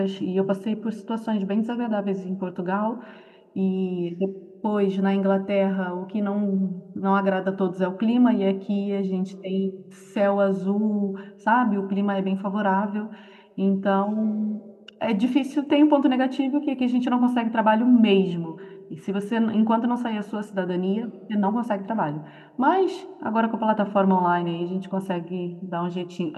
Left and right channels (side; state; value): both; identical; correlation 1.00